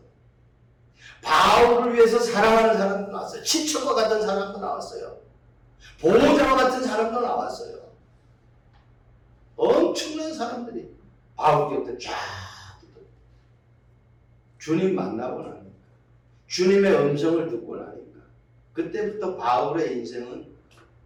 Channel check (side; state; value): both; identical; correlation 1.00